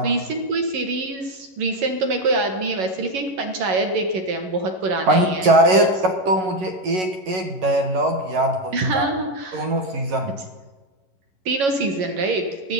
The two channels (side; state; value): left; late; 11 ms